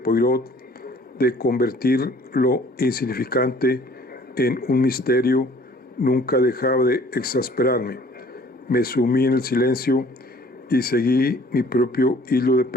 de convertir lo insignificante en un misterio nunca dejaba de exasperarme. Me sumí en el silencio y seguí mi propio hilo de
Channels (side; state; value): both; normal; correlation 0.54